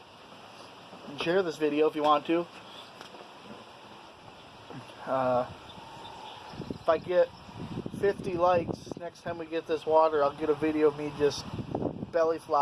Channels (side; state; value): both; identical; correlation 1.00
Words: and share this video if you want to. If I get 50 likes next time we get this water, I'll get a video of me just belly